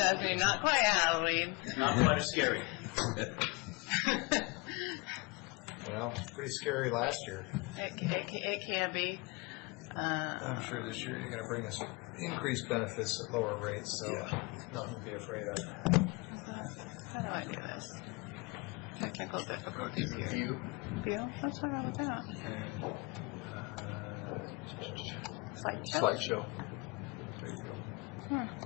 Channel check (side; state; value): right; quieter; 26.9 dB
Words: Not quite Halloween. Not quite as scary. Well, pretty scary last year. It can be. I'm sure this year you're going to bring us increased benefits at lower rates, so nothing to be afraid of. How do I do this? Technical difficulties here. View. View? What's wrong with that? And Slideshow? slideshow. There you go.